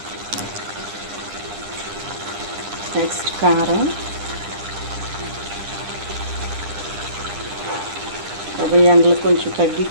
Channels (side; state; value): left; late; 10 ms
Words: నెక్స్ట్ కారం. ఎండలు కొంచెం